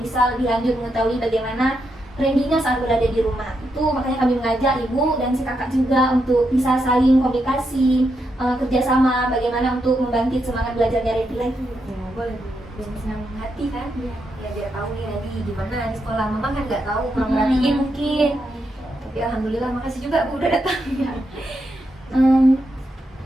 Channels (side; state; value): both; normal; correlation 0.83